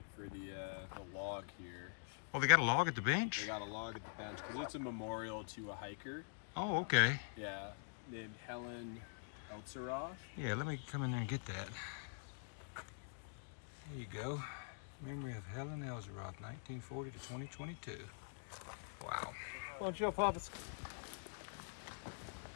for the log here. Oh, they got a log at the bench? They got a log at the bench because it's a memorial to a hiker. Oh, okay. Yeah, named Helen Eltzeroth. Yeah, let me come in there and get that. There you go. Memory of Helen Eltzeroth, 1940 to 2022. Wow. Don't you, Papa?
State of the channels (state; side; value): silent; right; digital silence